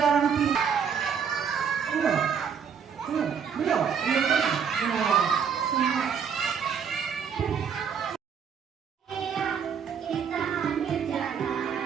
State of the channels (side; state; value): left; quieter; 7.1 dB